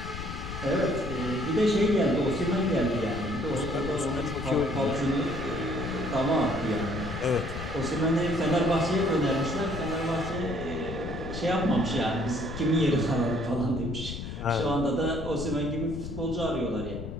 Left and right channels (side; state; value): left; noise; rumble, 8 dB below the sound